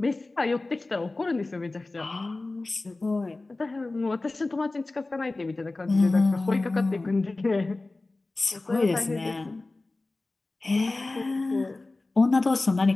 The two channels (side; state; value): right; quieter; 3.2 dB